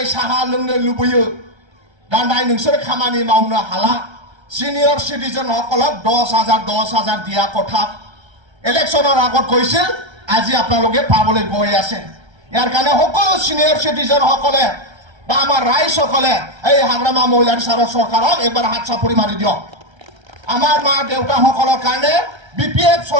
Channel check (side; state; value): left; late; 1.3 ms